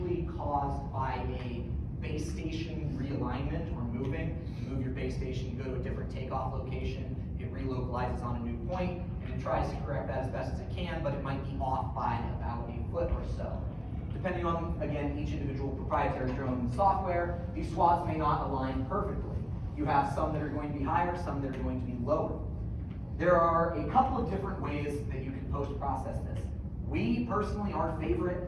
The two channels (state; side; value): identical; both; correlation 1.00